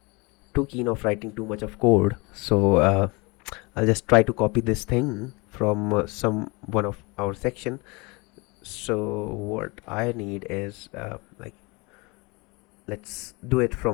too keen of writing too much of code, so I'll just try to copy this thing from some one of our section. So what I need is like, let's do it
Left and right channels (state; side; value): quieter; right; 27.1 dB